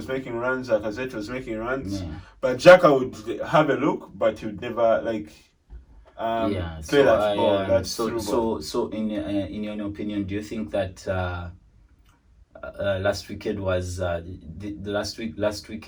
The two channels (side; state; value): both; identical; correlation 1.00